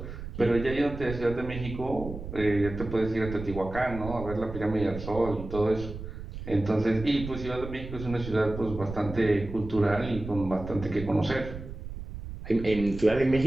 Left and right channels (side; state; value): right; noise; rumble, 10 dB below the sound